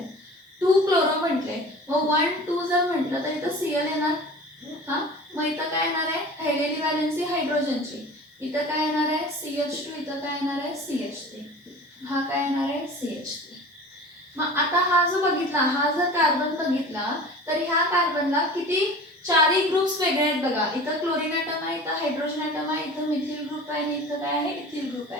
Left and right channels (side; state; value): both; normal; correlation 0.39